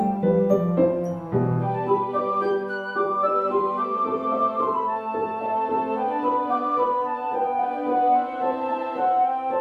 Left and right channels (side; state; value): both; identical; correlation 1.00